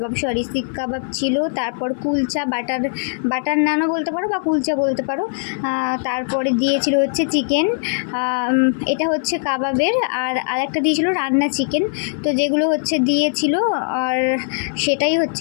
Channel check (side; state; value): right; silent; 59 dB below the other